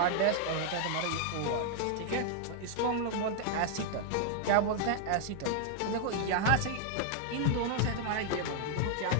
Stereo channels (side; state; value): both; different; correlation 0.00